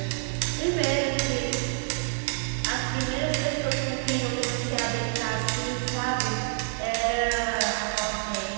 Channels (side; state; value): left; silent; 60 dB below the other